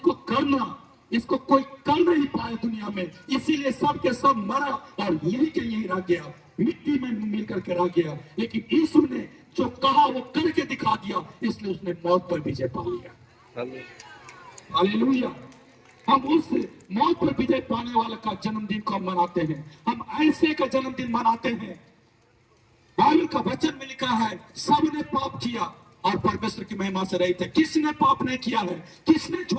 करना, इसको कोई कर नहीं पाए दुनिया में, इसीलिए सब के सब मरा और यही के यही रह गया, मिट्टी में मिल करके रह गया। लेकिन यीशु ने जो कहा वो करके दिखा दिया, इसलिए उसने मौत पर विजय पा लिया। हालेलुया। हम उस मौत पर विजय पाने वाले का जन्मदिन को मनाते हैं, हम ऐसे का जन्मदिन मनाते हैं। बाइबल का वचन में लिखा है सबने पाप किया और परमेश्वर की महिमा से रहित है। किसने पाप नहीं किया है? किसने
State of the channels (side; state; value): both; identical; correlation 1.00